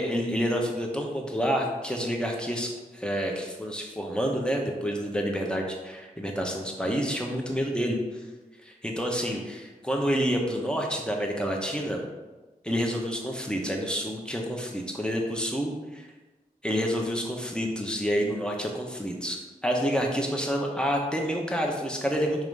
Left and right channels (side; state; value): both; normal; correlation 0.75